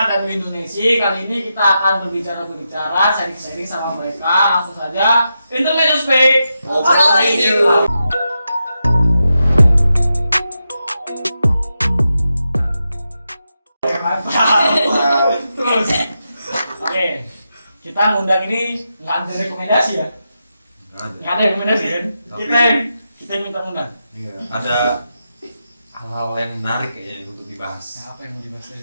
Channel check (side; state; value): both; inverted; correlation -0.87